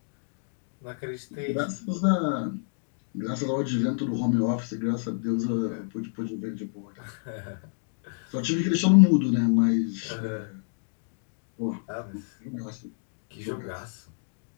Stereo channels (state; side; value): silent; right; digital silence